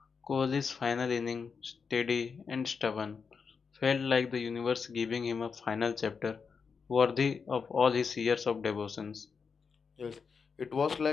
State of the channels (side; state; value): right; quieter; 5.6 dB